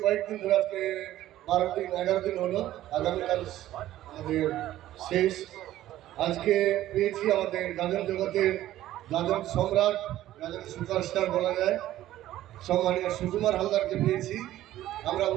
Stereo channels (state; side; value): quieter; left; 13.9 dB